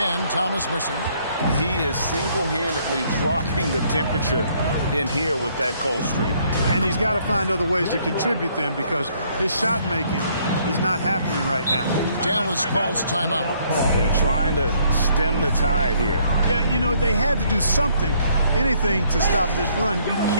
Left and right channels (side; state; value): both; inverted; correlation -0.66